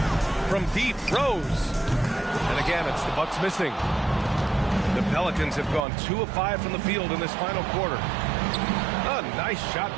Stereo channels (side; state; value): left; drops out; at 5.9 s